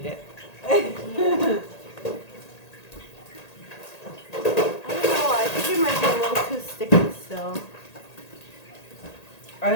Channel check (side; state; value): right; late; 1.8 ms